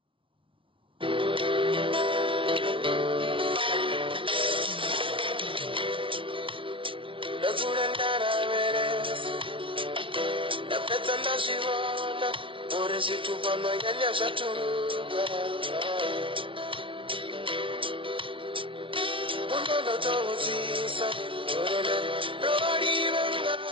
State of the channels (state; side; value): late; left; 0.25 ms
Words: Nazurandara veres Napetanda shivana Ore situpano yanya shatunga Unono towuzisa Orele rori